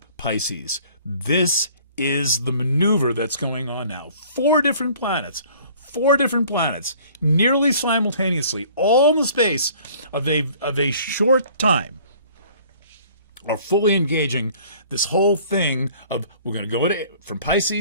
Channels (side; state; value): both; inverted; correlation -0.53